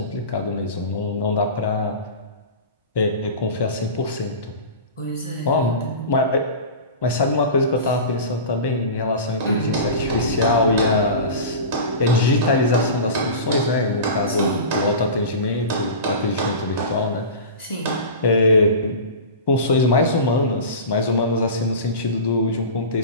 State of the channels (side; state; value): both; inverted; correlation -0.31